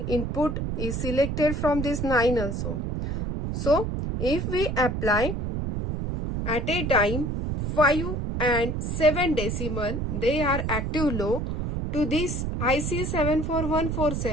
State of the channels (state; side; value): noise; right; rumble, 2 dB below the sound